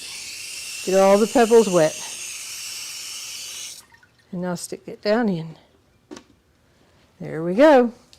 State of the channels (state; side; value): identical; both; correlation 1.00